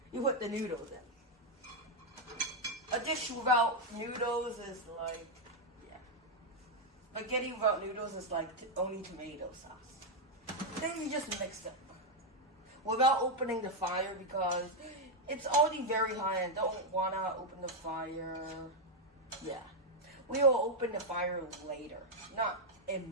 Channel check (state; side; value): normal; both; correlation 0.01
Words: you put the noodles in. A dish without noodles is spaghetti without noodles is like only tomato sauce. Then you just mix it without opening the fire because it's already very high and don't want to open the fire. Yeah. We will open the fire later, not